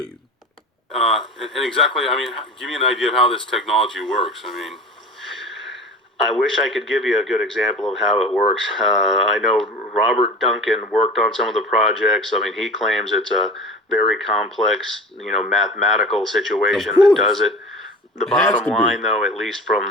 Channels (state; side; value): normal; both; correlation 0.36